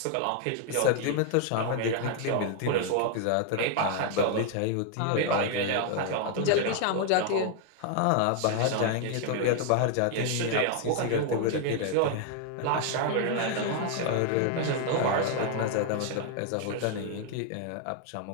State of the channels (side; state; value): both; different; correlation 0.00